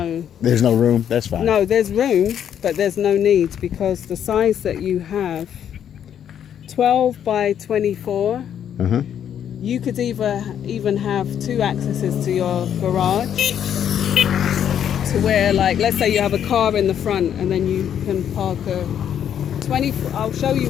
no room. That's fine. No, there's room, but there's no need because the size that you have, 12 by 24, you could even have 2 accesses to your garage, to where, like, let's say you have a car in the front and then you can park a 20. I'll show you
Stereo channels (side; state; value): right; quieter; 9.3 dB